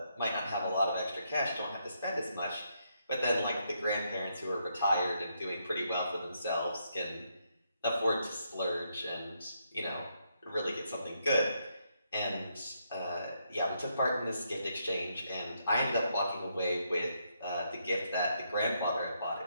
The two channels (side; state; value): both; inverted; correlation -0.78